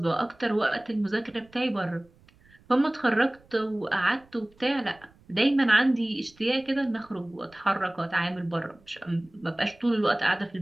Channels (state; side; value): noise; right; rumble, 29 dB below the sound